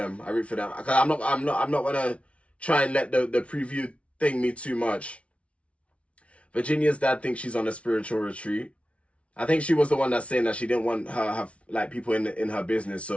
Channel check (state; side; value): late; right; 0.062 ms